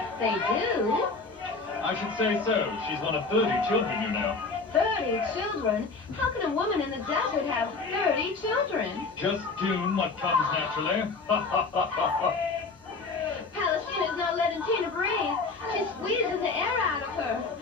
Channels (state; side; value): quieter; right; 4.1 dB